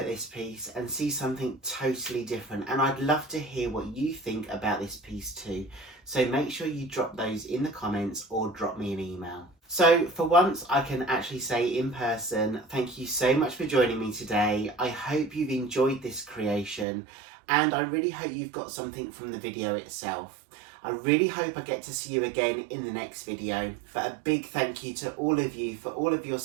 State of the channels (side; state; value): left; drops out; at 16.9 s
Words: this piece and see something totally different, and I'd love to hear what you think about this piece too. So make sure you drop those in the comments or drop me an email. So for once I can actually say in person, thank you so much for joining me today. I hope you've enjoyed this creation, and I really hope you've got something from the video itself. I really hope I get to see you again in the next video. But a big thank you to all of you for all of your